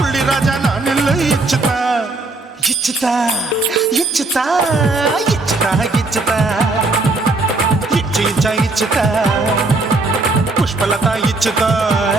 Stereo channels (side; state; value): left; quieter; 3.2 dB